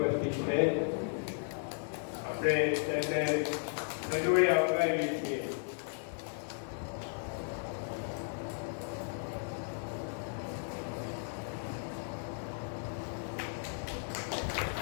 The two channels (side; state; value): right; silent; 54 dB below the other